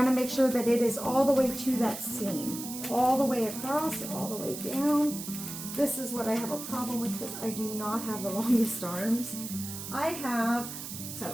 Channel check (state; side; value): noise; right; hiss, 9 dB below the sound